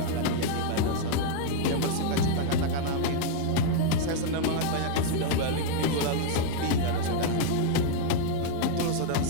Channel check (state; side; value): different; both; correlation 0.00